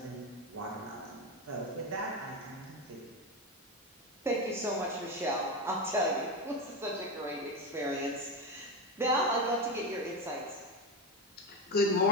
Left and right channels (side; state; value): both; normal; correlation 0.17